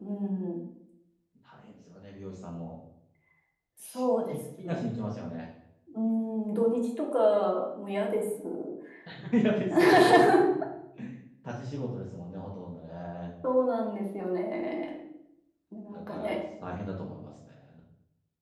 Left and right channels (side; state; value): both; identical; correlation 1.00